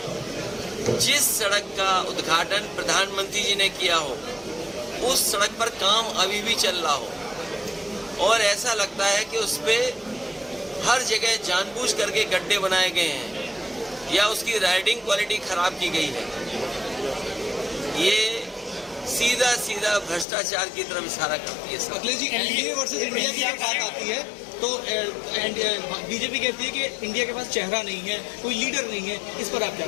जिस सड़क का उद्घाटन प्रधानमंत्री जी ने किया हो, उस सड़क पर काम अभी भी चल रहा हो और ऐसा लगता है कि उस पे हर जगह जानबूझ करके गड्ढे बनाए गए हैं या उसकी राइडिंग क्वालिटी खराब की गई है। ये सीधा सीधा भ्रष्टाचार की तरफ इशारा करती है। Akhilesh ji, NDA versus India की जब बात आती है तो बीजेपी कहती है कि इंडिया के पास चेहरा नहीं है, कोई लीडर नहीं है, इस पर आप क्या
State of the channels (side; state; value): right; drops out; at 20.2 s